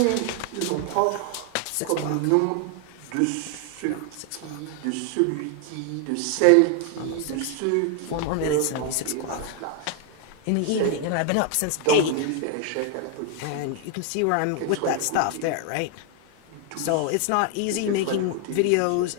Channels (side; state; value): both; different; correlation 0.00